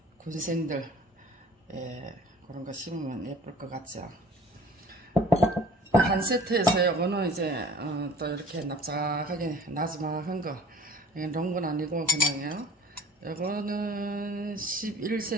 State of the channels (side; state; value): both; normal; correlation 0.47